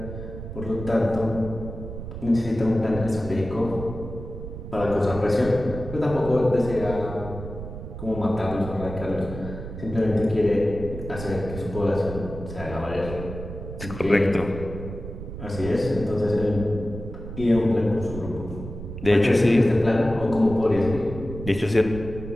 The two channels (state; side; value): noise; right; rumble, 10 dB below the sound